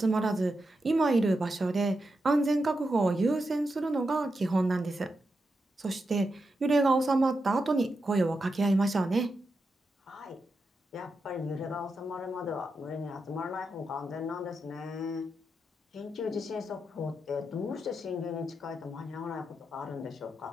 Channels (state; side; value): normal; both; correlation 0.87